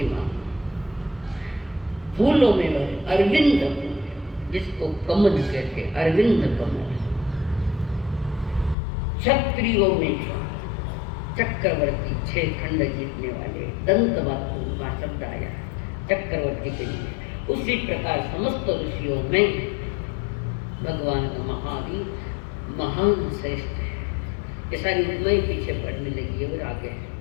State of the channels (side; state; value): right; drops out; at 8.8 s